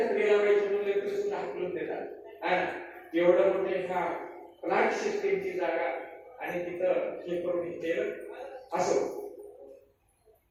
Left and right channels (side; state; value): both; identical; correlation 1.00